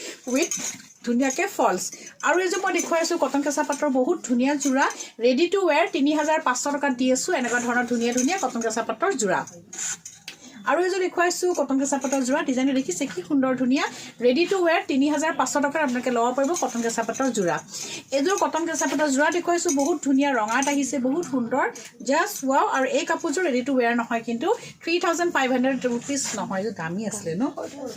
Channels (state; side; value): identical; both; correlation 1.00